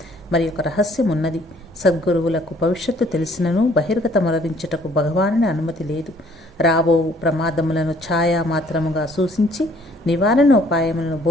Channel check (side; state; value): both; normal; correlation 0.60